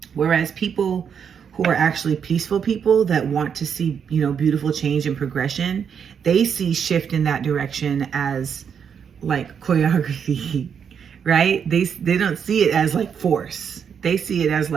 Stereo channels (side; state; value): left; quieter; 7.3 dB